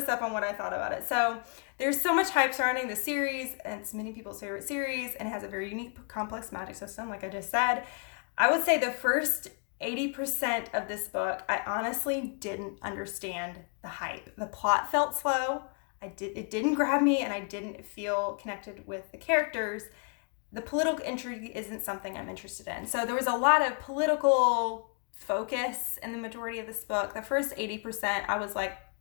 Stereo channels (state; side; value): quieter; right; 39.7 dB